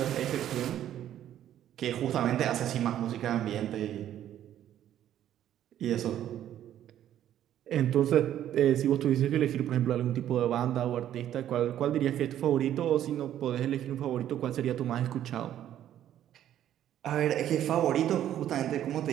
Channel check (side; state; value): left; quieter; 11.3 dB